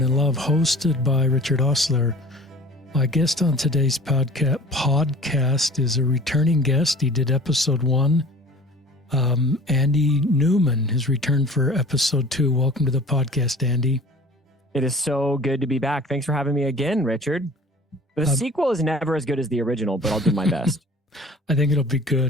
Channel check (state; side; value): normal; both; correlation 0.45